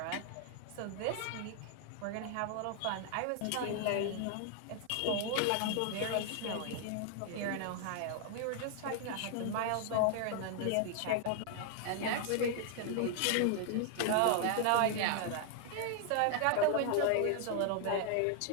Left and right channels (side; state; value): both; different; correlation 0.00